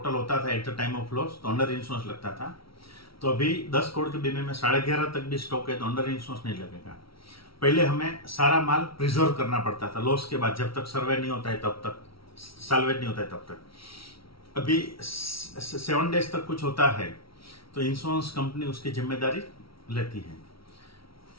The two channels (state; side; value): late; right; 0.75 ms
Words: होता था at the time of loss, तो अंडर इंश्योरेंस लगता था। तो अभी 10 करोड़ के बीमे में 11.5 तक भी स्टॉक है तो अंडर इंश्योरेंस नहीं लगेगा। पहले हमें सारा माल प्रिजर्व करना पड़ता था लॉस के बाद, जब तक सर्वे नहीं होता है तब तक, साल्वेट नहीं होता है तब तक। अभी 7 डेज तक कुछ होता है तो इंश्योरेंस कंपनी उसकी जिम्मेदारी लेती है।